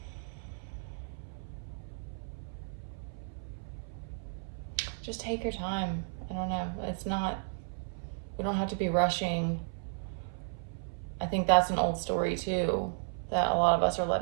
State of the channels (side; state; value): left; silent; 55 dB below the other